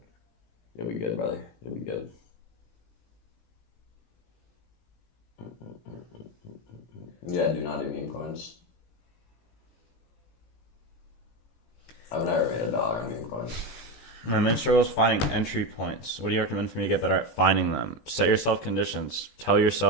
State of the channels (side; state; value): right; late; 17 ms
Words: you'll be good, brother. You'll be good. Yeah, do not do meme coins. I've never made $1 on meme coins. My main struggle is finding entry points. What do you recommend for me to get better at finding them? Set yourself conditions. Tell